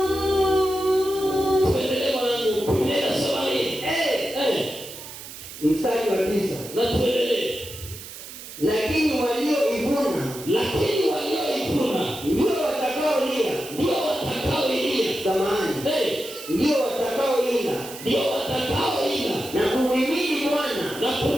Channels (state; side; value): noise; right; hiss, 13 dB below the sound